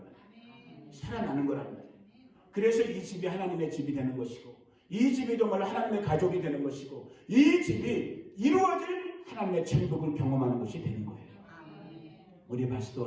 말이에요. 살아나는 거란 말이에요. 그래서 이 집이 하나님의 집이 되는 것이고, 이 집이 정말로 하나님의 가족이 되는 것이고, 이 집이 이루어질 하나님의 천국을 경험하는 것이 되는 거예요. 우리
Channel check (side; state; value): both; identical; correlation 1.00